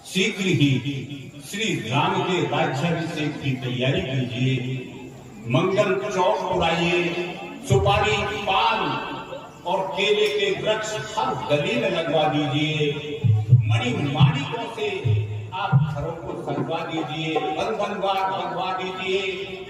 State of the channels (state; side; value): identical; both; correlation 1.00